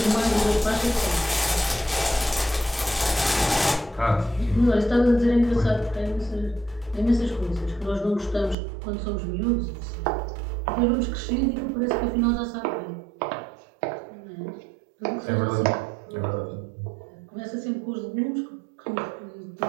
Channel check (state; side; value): drops out; left; at 8.6 s